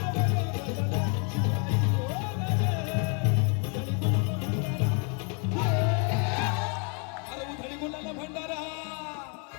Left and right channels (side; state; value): right; quieter; 36.2 dB